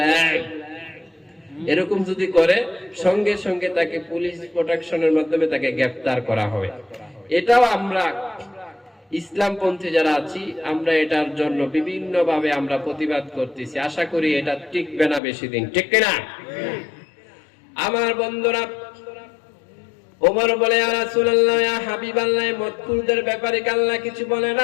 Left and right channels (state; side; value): drops out; right; at 15.2 s